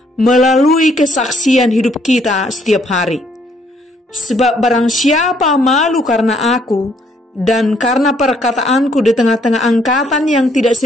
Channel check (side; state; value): both; normal; correlation 0.67